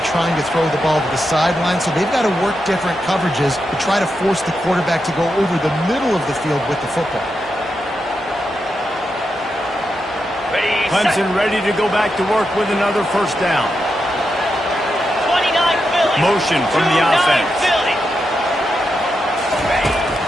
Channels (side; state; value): both; normal; correlation 0.86